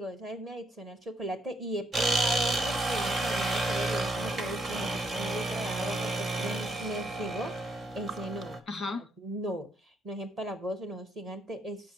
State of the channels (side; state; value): both; normal; correlation 0.74